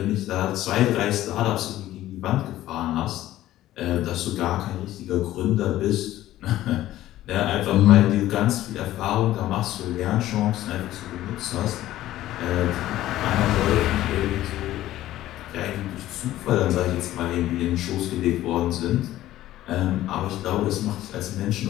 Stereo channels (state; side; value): quieter; right; 14.4 dB